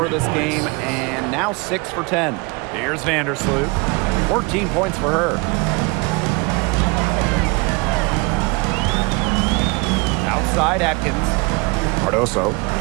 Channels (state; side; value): quieter; left; 27.3 dB